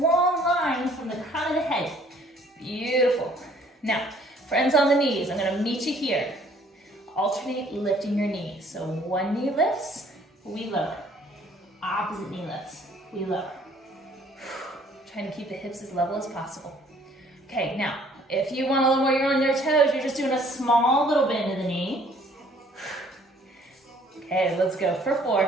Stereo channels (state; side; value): normal; both; correlation 0.59